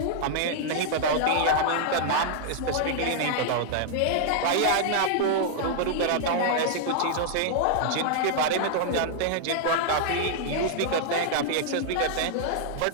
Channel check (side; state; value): both; different; correlation -0.01